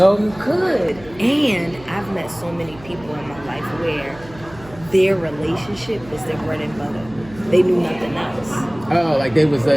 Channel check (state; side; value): noise; right; hum, 20 dB below the sound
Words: You could. And I've met so many people in my life where their relationship was their bread and butter. They knew nothing else. Oh, they was